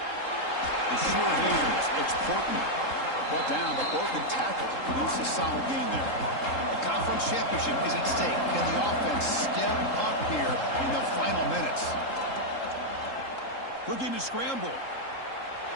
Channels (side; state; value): right; late; 3.7 ms